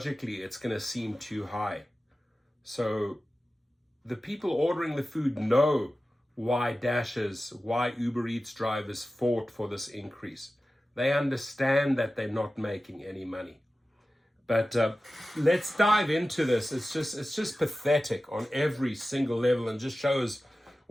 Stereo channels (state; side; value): normal; both; correlation 0.95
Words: it's going to seem too high. So the people ordering the food know why Dashers, why Uber Eats drivers fought for this increase. They understand that they're not making any money. But let's dive into this. It's just pathetic on every single level and just shows